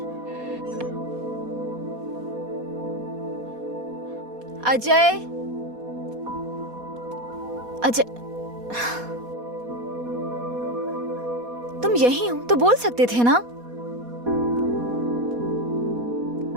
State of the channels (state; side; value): late; left; 4.2 ms